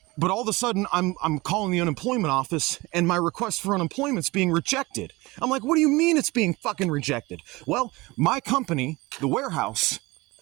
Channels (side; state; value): left; quieter; 22.3 dB